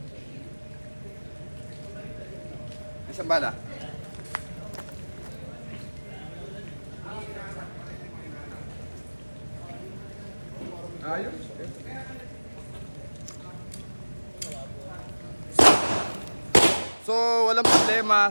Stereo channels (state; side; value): inverted; both; correlation -1.00